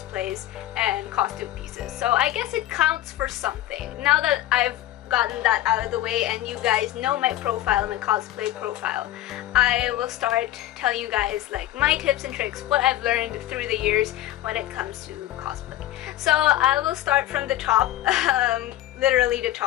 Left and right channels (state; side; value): quieter; right; 13.9 dB